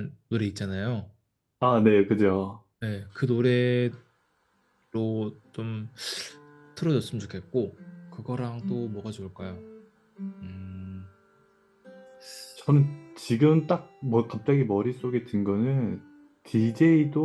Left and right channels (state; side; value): identical; both; correlation 1.00